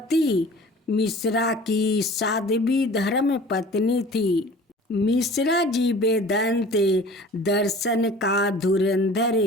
मिश्रा की साध्वी धर्म पत्नी थी। मिश्रा जी वेदांत दर्शन का धुरंधर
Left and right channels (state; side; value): normal; both; correlation 0.45